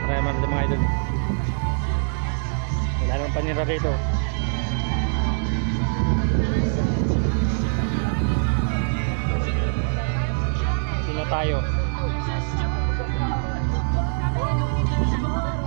din mga idol. Wala nang panira rito. Sino tayo?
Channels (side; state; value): left; silent; digital silence